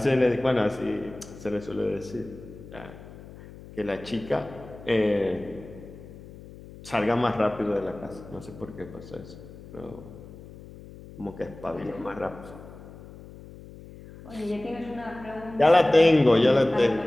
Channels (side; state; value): left; noise; hum, 17 dB below the sound